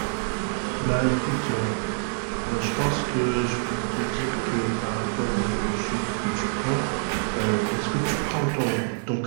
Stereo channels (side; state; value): left; silent; digital silence